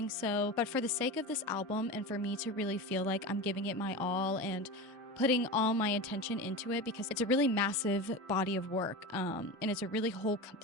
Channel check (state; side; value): normal; both; correlation 0.26